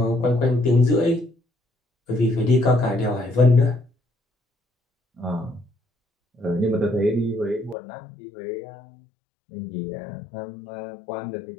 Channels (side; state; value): right; drops out; at 7.8 s